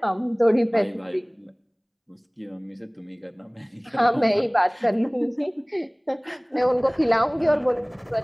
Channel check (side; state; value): both; identical; correlation 1.00